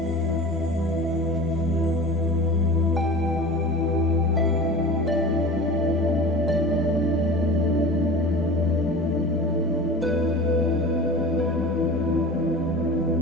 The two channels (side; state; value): both; normal; correlation 0.36